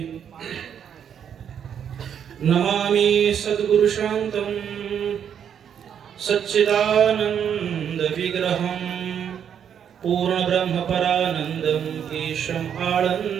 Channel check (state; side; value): quieter; left; 8.4 dB